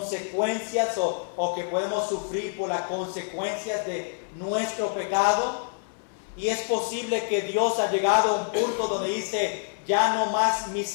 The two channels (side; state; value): right; silent; 60 dB below the other